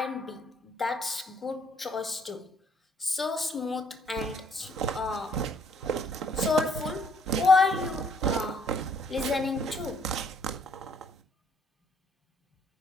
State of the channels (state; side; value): normal; both; correlation 0.64